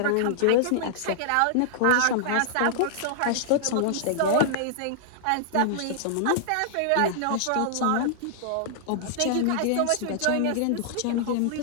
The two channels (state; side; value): different; both; correlation -0.01